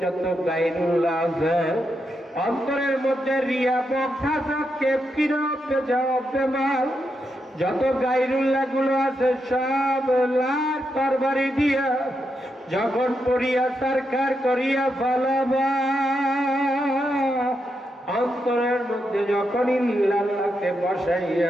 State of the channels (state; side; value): normal; both; correlation 0.83